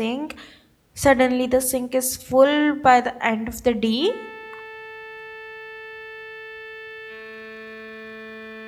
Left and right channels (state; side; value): identical; both; correlation 1.00